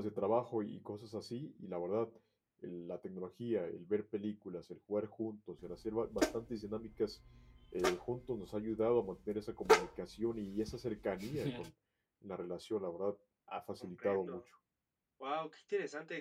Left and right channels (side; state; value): both; identical; correlation 1.00